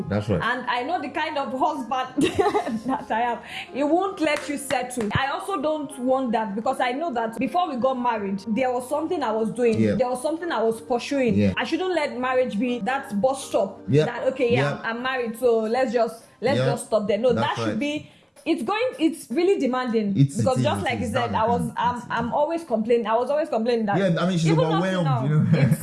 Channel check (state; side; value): identical; both; correlation 1.00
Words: That's right. And I know the kind of husband that I am. He won't let you settle. I also don't want that, because I know that before we got married, there was something I was doing. Yeah. There was something I was pursuing. Yeah. I shouldn't let marriage be that bus stop. Yeah. That I'm married, so let's just stop there. No, that should be. It's really demanding, because just like you said, I'm always complaining. I was always complaining that. Yeah, I mean, she's overwhelmed. Now,